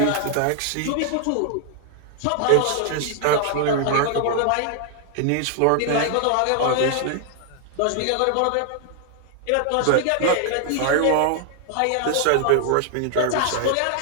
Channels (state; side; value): different; both; correlation 0.00